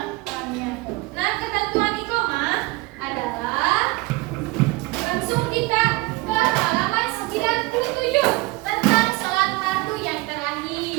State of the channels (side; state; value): left; quieter; 22.9 dB